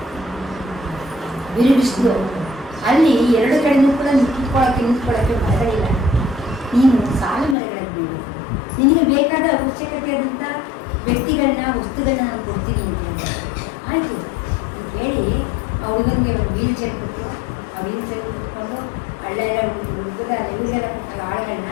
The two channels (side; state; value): right; drops out; at 7.6 s